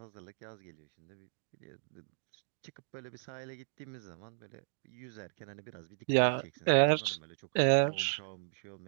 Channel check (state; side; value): silent; left; digital silence